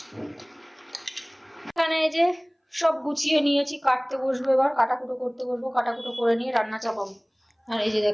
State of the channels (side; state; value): both; identical; correlation 1.00